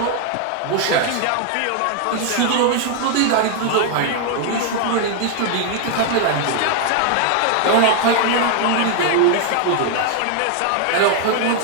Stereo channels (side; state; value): both; different; correlation 0.00